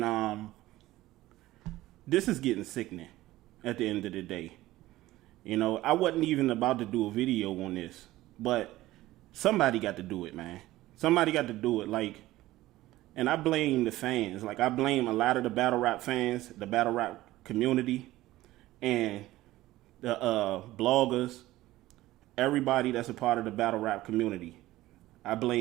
this is getting sickening at the end of the day. You know, I wasn't even about to do a video on this, but somebody got to do it, man. Somebody got to do it, and I blame the fans. Like, I blame a lot of the battle rap fans, the battle rap community, and the bloggers, everybody that's a part of the battle rap community. I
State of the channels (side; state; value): left; quieter; 16.6 dB